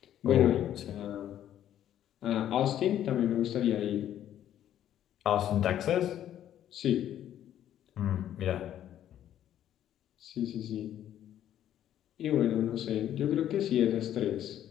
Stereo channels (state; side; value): quieter; right; 11.2 dB